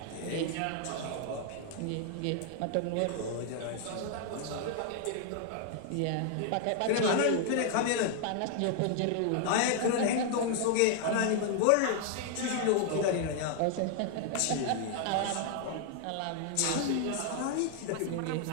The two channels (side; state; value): both; different; correlation 0.00